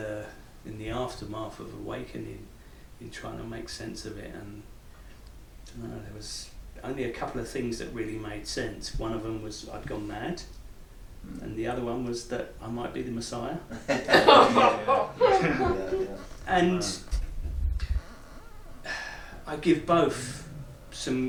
aftermath of awakening, in trying to make sense of it, and I don't know, there was only a couple of things that really made sense. One of them was I'd gone mad, and the other one was that I might be the Messiah. And I give both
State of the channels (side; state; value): both; identical; correlation 1.00